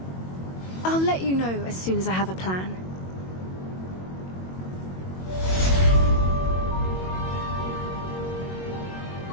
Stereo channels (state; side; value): late; right; 22 ms